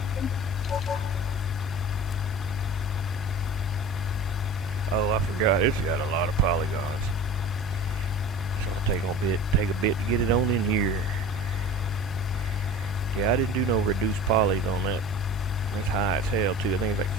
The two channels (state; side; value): noise; left; hum, 9 dB below the sound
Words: Oh, I forgot. It's got a lot of polygons. So I'll take a bit to get it on in here. Yeah, I didn't do no reduced polys on that. That's high as hell too. I think it's like